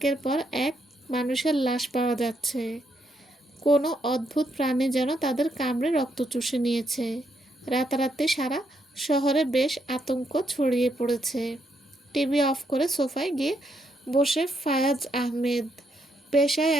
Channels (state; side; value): normal; both; correlation 0.77